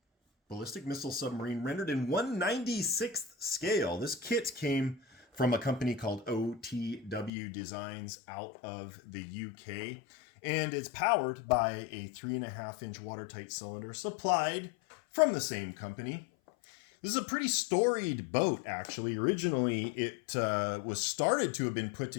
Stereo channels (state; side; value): drops out; right; at 7.3 s